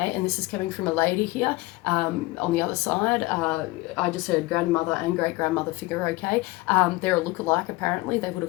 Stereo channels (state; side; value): quieter; right; 21.3 dB